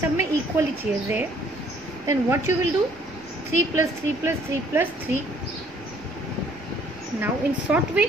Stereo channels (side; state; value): both; normal; correlation 0.61